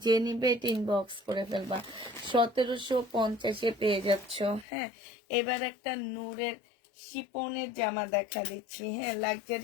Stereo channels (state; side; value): drops out; right; at 4.7 s